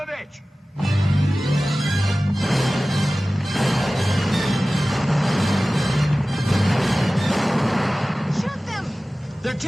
a bitch! Shoot them! They're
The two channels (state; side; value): normal; both; correlation 0.97